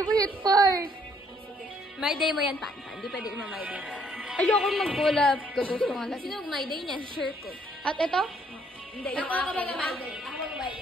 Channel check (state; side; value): normal; both; correlation 0.66